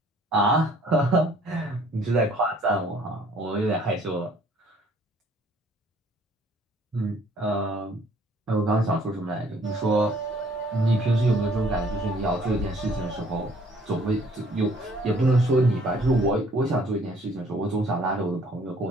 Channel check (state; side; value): normal; both; correlation 0.59